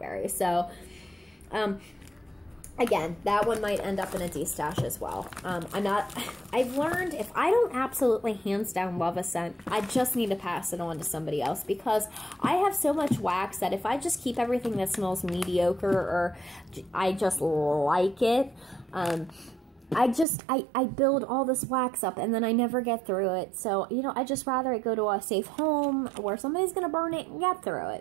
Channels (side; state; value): left; drops out; at 20.2 s